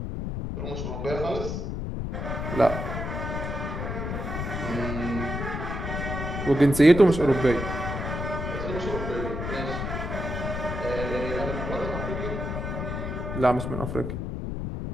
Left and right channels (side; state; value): left; noise; rumble, 4 dB below the sound